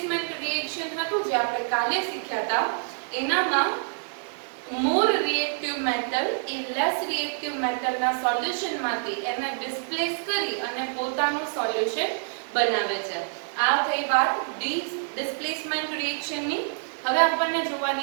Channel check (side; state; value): left; silent; digital silence